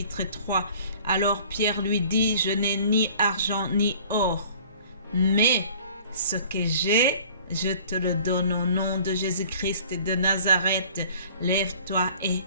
3. Alors Pierre lui dit, je n'ai ni argent ni or, mais ce que j'ai, je te le donne au nom de Jésus-Christ de Nazareth. Lève-toi et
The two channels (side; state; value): both; inverted; correlation -0.50